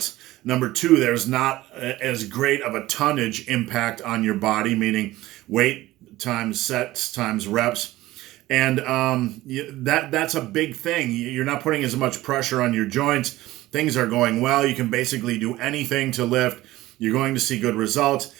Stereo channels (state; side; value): quieter; left; 17.1 dB